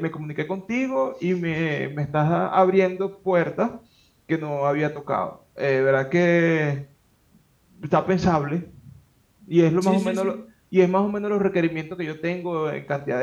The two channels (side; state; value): both; identical; correlation 1.00